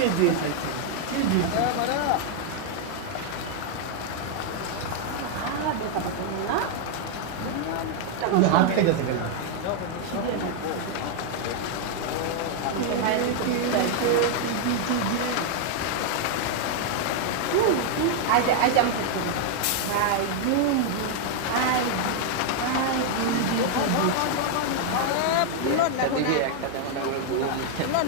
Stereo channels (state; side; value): different; both; correlation 0.00